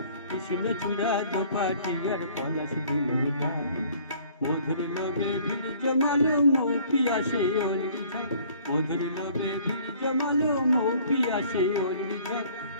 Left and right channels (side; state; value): both; inverted; correlation -0.55